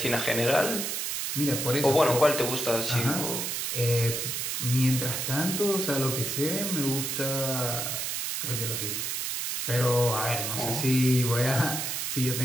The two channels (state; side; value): noise; right; hiss, 2 dB below the sound